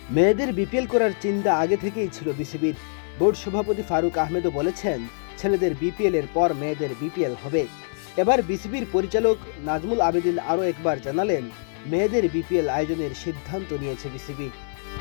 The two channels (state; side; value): silent; right; 58 dB below the other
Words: মেয়েদের বিপিএল করার চিন্তা আগে থেকেই ছিল বিসিবির। বোর্ড সভাপতি ফারুক আহমেদও বলেছেন, ছেলেদের বিপিএল এর পর মেয়েদের বিপিএল হবে। এবার বিসিবির পরিচালক নাজমুল আবেদিন আরও একবার জানালেন, মেয়েদের বিপিএল আয়োজনের সিদ্ধান্ত নিয়েছে বিসিবি।